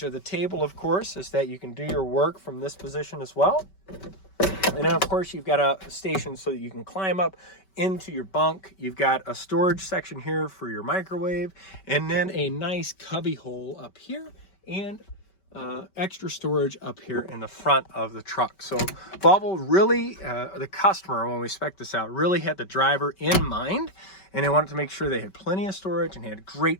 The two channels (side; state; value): right; late; 5.2 ms